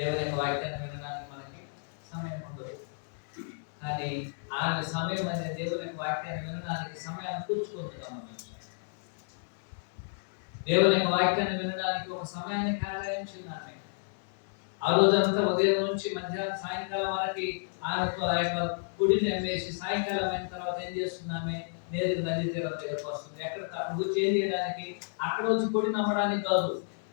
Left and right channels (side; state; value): right; silent; digital silence